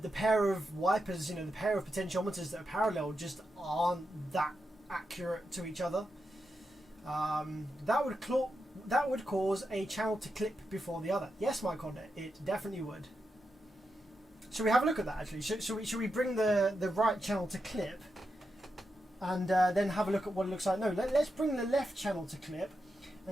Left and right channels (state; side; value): normal; both; correlation 0.87